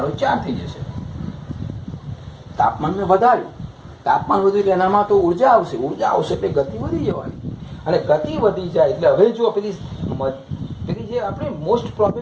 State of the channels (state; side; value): identical; both; correlation 1.00